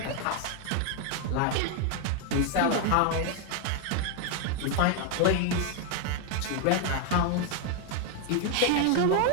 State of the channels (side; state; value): both; different; correlation 0.01